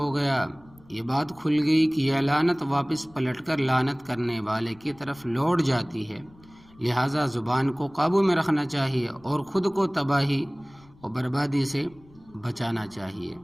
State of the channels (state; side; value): noise; left; rumble, 26 dB below the sound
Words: گیا، یہ بات کھل گئی کہ یہ لعنت واپس پلٹ کر لعنت کرنے والے کی طرف لوٹ جاتی ہے، لہٰذا زبان کو قابو میں رکھنا چاہیے اور خود کو تباہی اور بربادی سے بچانا چاہیے۔